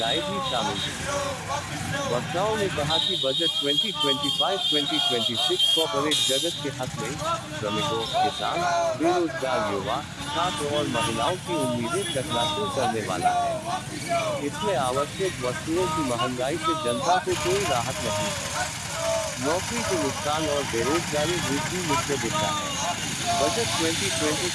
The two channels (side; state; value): both; identical; correlation 1.00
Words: भी शामिल थीं। वक्ताओं ने कहा कि बजट 2025-2026 कॉर्पोरेट जगत के हक में श्रमिकों, किसान, बेरोजगार युवा, छात्र और महिलाओं की उम्मीदें चकनाचूर करने वाला है। इसमें आवश्यक वस्तुओं की महंगाई से जनता को कोई राहत नहीं है। नौकरी के नुकसान और बेरोजगारी वृद्धि मुख्य दिशा है। बजट